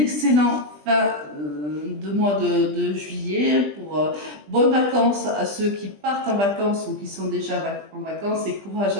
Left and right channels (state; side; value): late; left; 20 ms